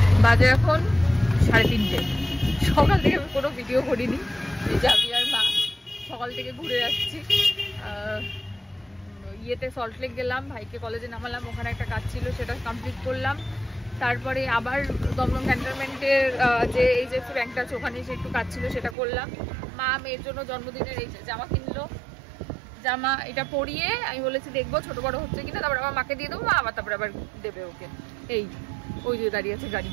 বাজে এখন 3:30। সকাল থেকে আমি কোনো ভিডিও করিনি। এই যে আমি আর মা সকাল থেকে ঘুরে যাচ্ছি। ইয়েতে সল্টলেক গেলাম, ভাইকে কলেজে নামালাম, ওখানে একটা কাজ ছিল সেটা কমপ্লিট করলাম। তারপরে আবার দমদম ক্যান্টনমেন্টের যে এইচডিএফসি ব্যাংকটা আছে ওখানে এসে একটু কাজ ছিল সেটা করলাম। মা মেয়ের জন্য জন্মদিনের এই জামা কিনলো, জামা এটা পরিয়ে আমি বলেছি দেখবো ছোট বড় হচ্ছে কিনা, তারপর আবার মাকে দিয়ে দেবো, মা আবার তারপরে আবার দেবে ওকে। এই ওই যে দাঁড়িয়ে আছে গাড়ি,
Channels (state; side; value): drops out; left; at 18.9 s